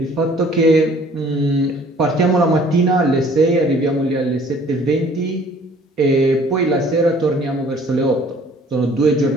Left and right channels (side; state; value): both; normal; correlation 0.55